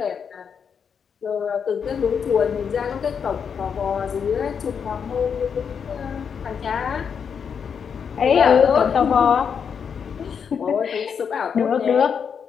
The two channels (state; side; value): quieter; right; 6.9 dB